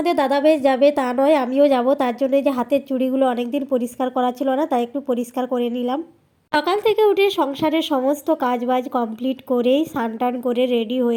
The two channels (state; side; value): identical; both; correlation 1.00